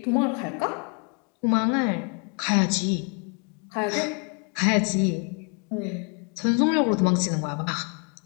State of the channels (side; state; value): right; quieter; 37.2 dB